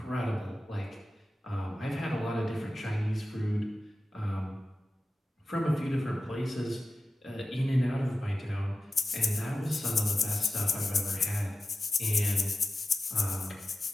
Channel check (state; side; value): normal; both; correlation 0.94